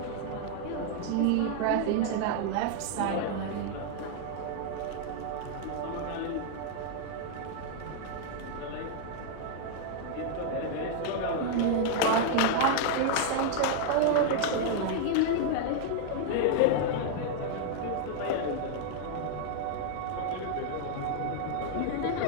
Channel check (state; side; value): different; both; correlation 0.00